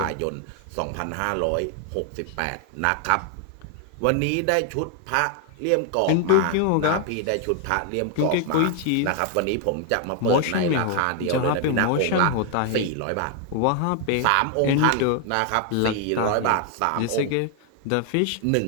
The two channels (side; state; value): both; different; correlation 0.00